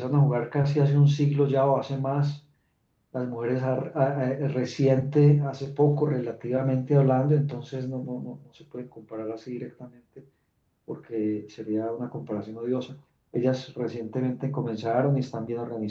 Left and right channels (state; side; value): identical; both; correlation 1.00